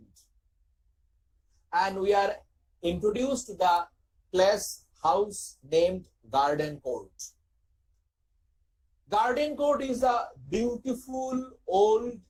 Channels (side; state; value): both; identical; correlation 1.00